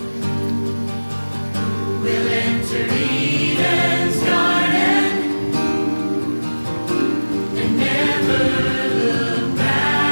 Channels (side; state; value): both; inverted; correlation -1.00